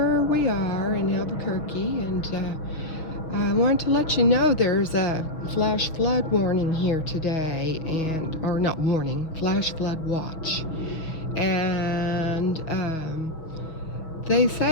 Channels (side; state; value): right; late; 6.2 ms